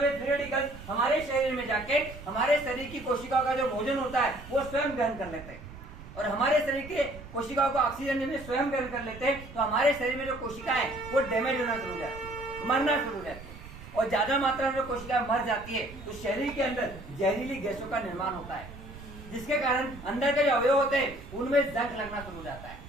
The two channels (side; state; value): right; noise; rumble, 15 dB below the sound